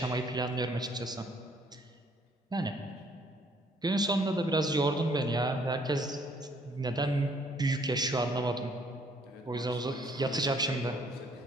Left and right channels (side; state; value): both; normal; correlation 0.63